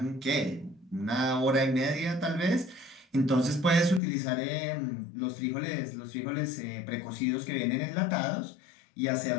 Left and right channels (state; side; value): drops out; right; at 4.0 s